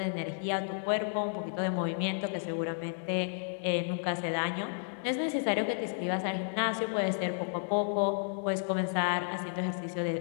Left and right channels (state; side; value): silent; right; digital silence